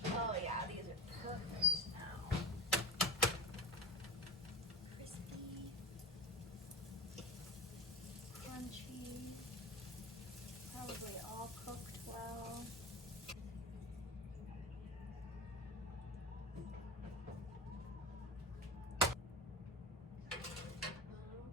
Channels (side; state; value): both; normal; correlation 0.26